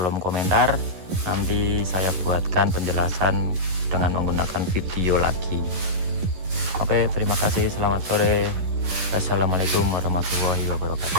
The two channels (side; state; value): left; late; 11 ms